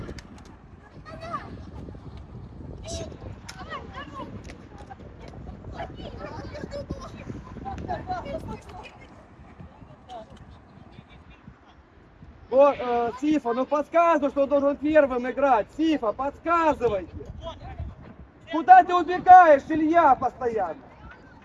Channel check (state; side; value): identical; both; correlation 1.00